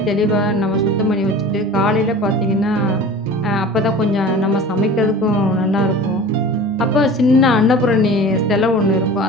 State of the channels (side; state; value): both; normal; correlation 0.38